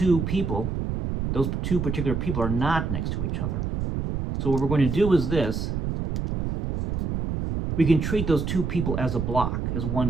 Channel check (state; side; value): noise; right; rumble, 2 dB below the sound